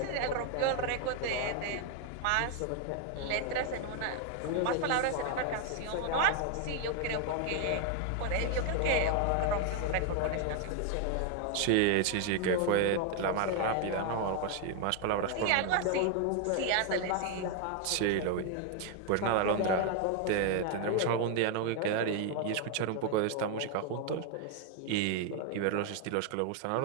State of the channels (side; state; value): both; different; correlation 0.00